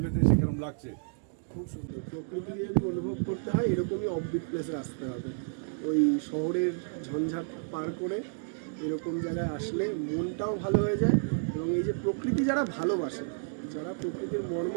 এসে কেরম লাগছে। প্রকৃতি যদি অনুভব করতে হয় এরকমই অফবিট প্লেসে আসতে হবে। ওই শহরের ঝঞ্ঝাট পার করে এরকম জায়গায় আসলে মনটাও ভালো হয়ে যায়। এবং এই যে প্রকৃতি যারা ভালোবাসে, যারা প্রকৃতির মর্ম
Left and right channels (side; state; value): left; silent; digital silence